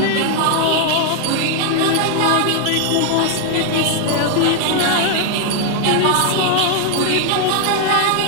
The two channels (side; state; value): both; different; correlation 0.00